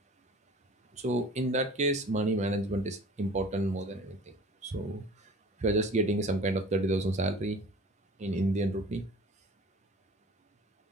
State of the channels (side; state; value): both; normal; correlation 0.45